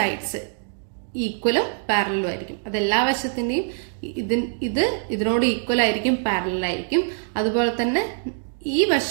ഈക്വലും പാരലലും ആയിരിക്കും. അത് എല്ലാ വശത്തിന്റെയും ഇതിനോട് ഈക്വൽ ആയിരിക്കും, പാരലൽ ആയിരിക്കും. അതുപോലെ തന്നെ ഈ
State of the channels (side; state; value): left; silent; digital silence